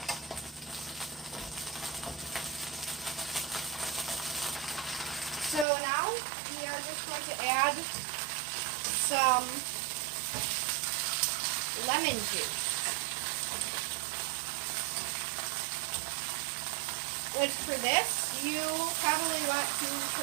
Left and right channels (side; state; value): left; drops out; at 5.7 s